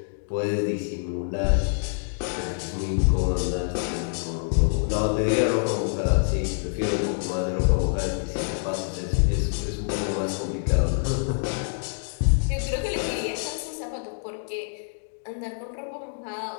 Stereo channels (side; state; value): right; silent; digital silence